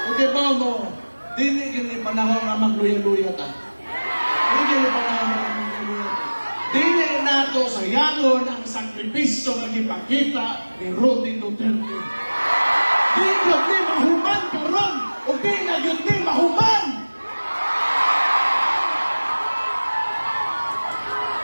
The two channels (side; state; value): both; inverted; correlation -1.00